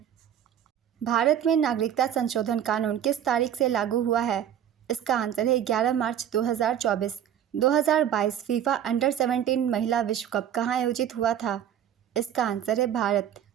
भारत में नागरिकता संशोधन कानून किस तारीख से लागू हुआ है? इसका आंसर है 11 मार्च 2024। 2022 फीफा अंडर 17 महिला विश्व कप कहाँ आयोजित हुआ था? इसका आंसर है भारत।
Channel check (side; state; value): left; quieter; 9.9 dB